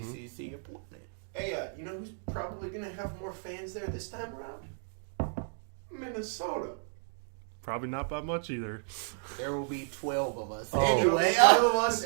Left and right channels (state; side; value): silent; left; digital silence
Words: ACC appointment. Hey, you know who's probably going to have more fans there this time around? Minnesota. Probably not by much either. There will be 12 of us. Oh. Anyway, 5 of us